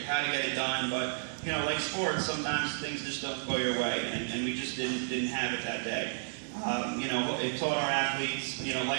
how to get it done, but you know, like sports, sometimes things just don't go your way, and we just didn't have it that day. You know, it taught our athletes, you know,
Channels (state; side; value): silent; left; digital silence